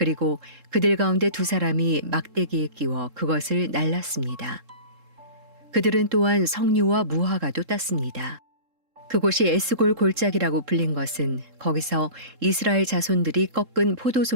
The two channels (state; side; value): late; left; 3.7 ms